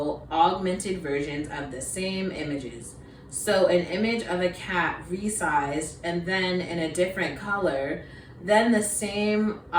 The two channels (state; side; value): identical; both; correlation 1.00